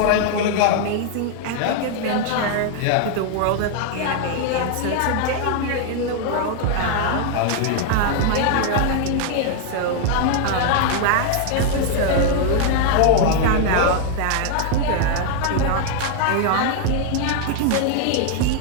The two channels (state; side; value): different; both; correlation 0.00